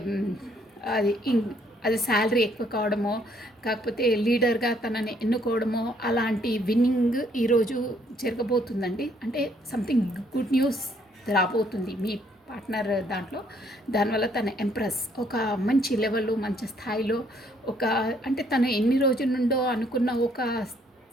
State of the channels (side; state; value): both; normal; correlation 0.67